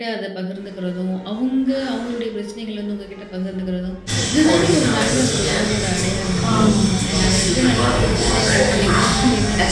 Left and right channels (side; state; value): both; identical; correlation 1.00